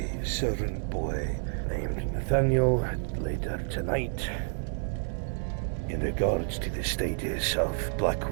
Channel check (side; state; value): left; silent; 58 dB below the other